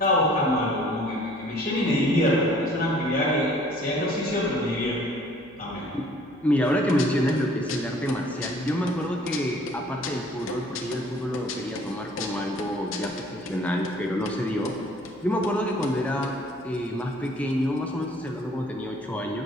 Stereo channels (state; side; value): noise; left; hum, 28 dB below the sound